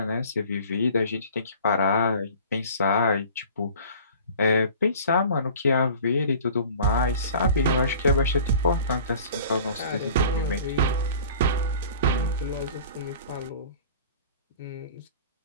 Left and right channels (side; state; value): both; inverted; correlation -0.45